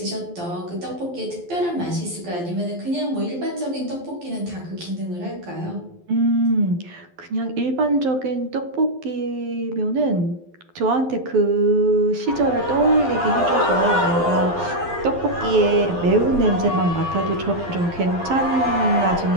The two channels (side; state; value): left; late; 12 ms